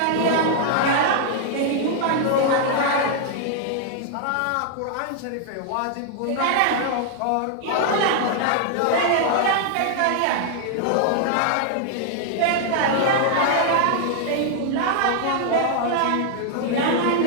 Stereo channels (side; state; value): both; different; correlation 0.00